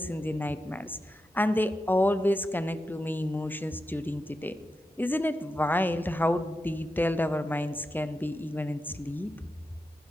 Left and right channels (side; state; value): both; normal; correlation 0.88